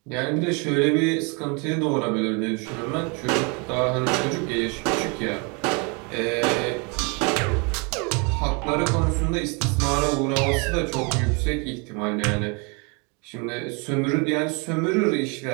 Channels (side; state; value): left; quieter; 32.2 dB